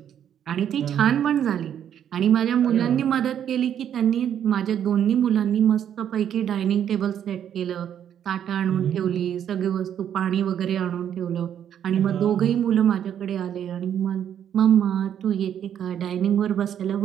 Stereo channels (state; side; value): quieter; left; 9.5 dB